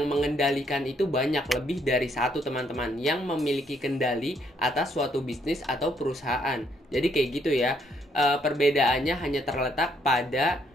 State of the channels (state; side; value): normal; both; correlation 0.71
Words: mengendalikan itu banyak, lebih dari satu, teman-teman, yang memiliki kendali atas suatu bisnis atau perusahaan. Jadi kayak gitu ya. Perbedaannya hanya terletak pada